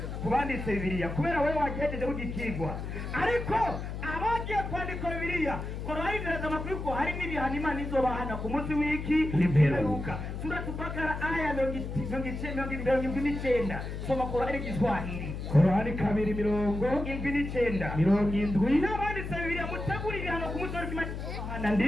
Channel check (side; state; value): left; noise; hum, 6 dB below the sound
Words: kubanditse Bibiliya kubera wewe wagejeje kugikigwa ariko abagiye kwandika Bibiliya Qur'ani iraza amakuru ko hari n'ibihano Imana izobahana ku munsi w'iki n'imperuka sura Bakara aya 29 soma Qur'ani Kiswahili Qur'ani 2:79 n'abanditse Bibiliya mutegura ibihano ku munsi w'Imana